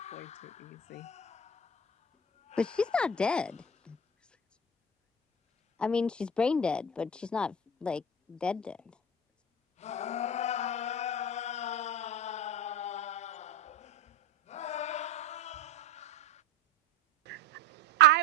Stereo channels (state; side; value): normal; both; correlation 0.28